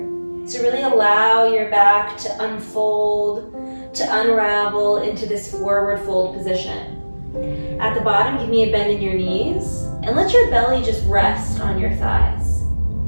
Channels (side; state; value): both; inverted; correlation -1.00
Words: So really allow your back to unfold, to unravel into this forward fold position. At the bottom, give me a bend in your knees, and let your belly just rest on your thighs.